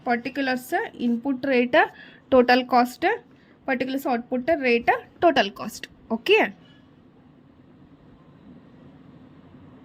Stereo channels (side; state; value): both; identical; correlation 1.00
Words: particulars input rate, total cost, particulars output rate, total cost. Okay,